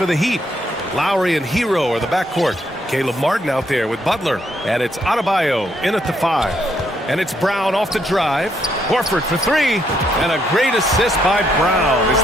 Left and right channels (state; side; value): normal; both; correlation 0.74